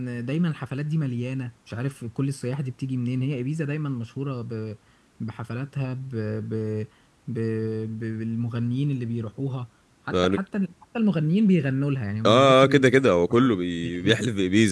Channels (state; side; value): identical; both; correlation 1.00